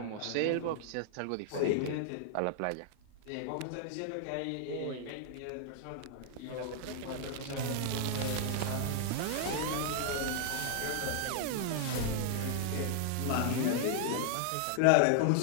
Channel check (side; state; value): both; different; correlation 0.00